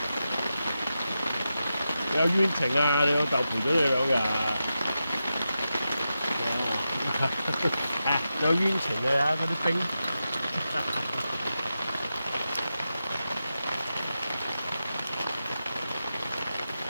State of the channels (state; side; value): inverted; both; correlation -0.90